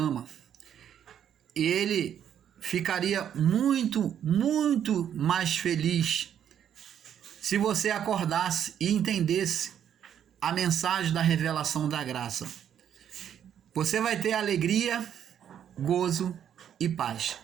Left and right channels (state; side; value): quieter; left; 9.4 dB